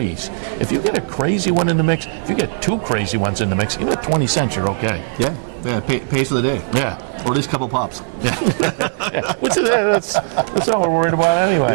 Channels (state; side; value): silent; left; digital silence